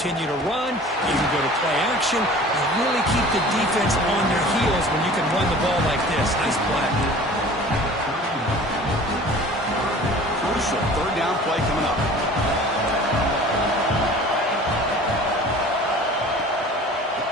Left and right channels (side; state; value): both; normal; correlation 0.44